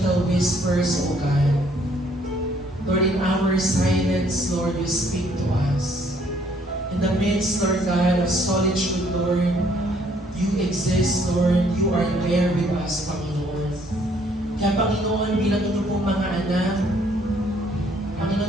whispers, O God, Lord, in our silence, Lord, you speak to us. In the midst, Lord God, of solitude, Lord, you exist, Lord. You are there with us, Panginoon. Kaya, Panginoon, bilang inyo pong mga anak,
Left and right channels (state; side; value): normal; both; correlation 0.64